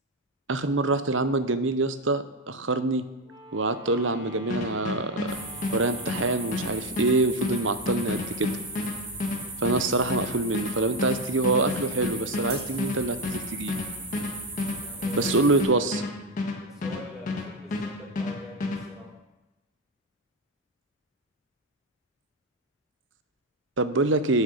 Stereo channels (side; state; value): both; normal; correlation 0.10